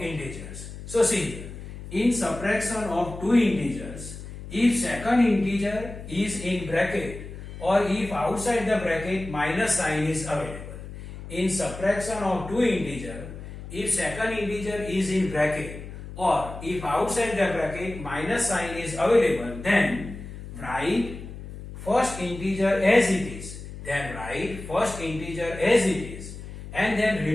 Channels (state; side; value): noise; left; hum, 12 dB below the sound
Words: integers. So see here, in subtraction of two integers, if second integer is in bracket or if outside the bracket minus sign is available. In subtraction of two integer, if second integer is in bracket or if outside the bracket minus sign is available, then write first integer as it is. Then write first integer as it is, and then